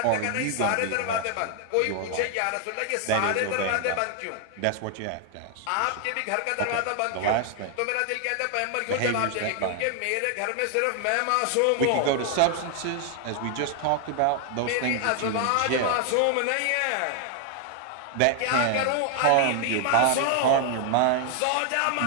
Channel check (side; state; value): both; different; correlation 0.00